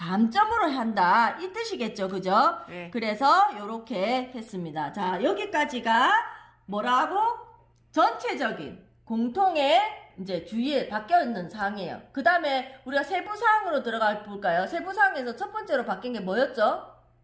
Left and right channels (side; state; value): both; identical; correlation 1.00